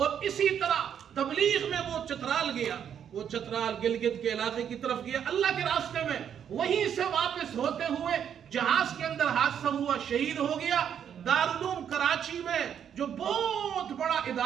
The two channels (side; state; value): left; quieter; 8.6 dB